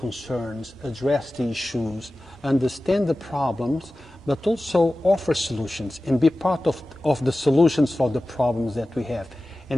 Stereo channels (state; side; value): normal; both; correlation 0.96